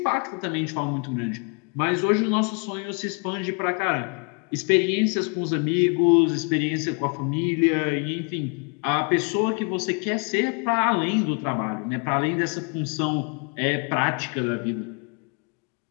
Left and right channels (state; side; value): quieter; right; 35.7 dB